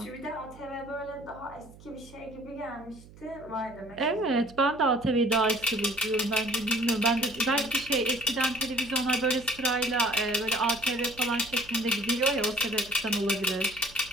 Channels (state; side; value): noise; right; hum, 21 dB below the sound